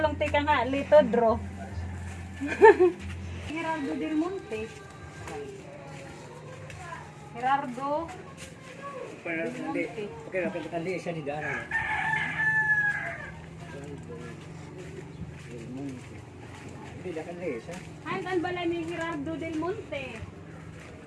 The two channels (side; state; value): both; identical; correlation 1.00